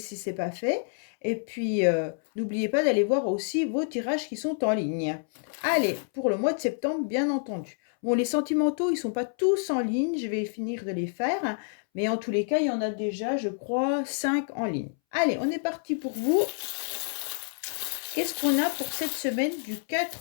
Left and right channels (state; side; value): silent; right; 59 dB below the other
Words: ce n'est pas fait. Et puis, n'oubliez pas d'aller voir aussi vos tirages qui sont en ligne. Allez, pour le mois de septembre, bien entendu. Bon, les sentimentaux, ils ne sont pas tous en ligne. Je vais finir de les faire. Mais en tous les cas, il y en a déjà, je crois, 5 en ligne. Allez, on est parti pour vous. Qu'est-ce qu'on a pour cette semaine du